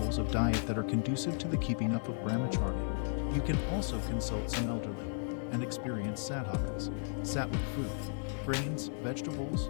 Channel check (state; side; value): silent; right; 55 dB below the other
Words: of diet that are conducive to the keeping up of brahmacharya.